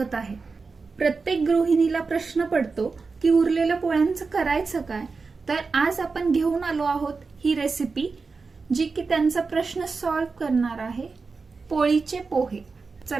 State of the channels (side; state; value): left; quieter; 4.4 dB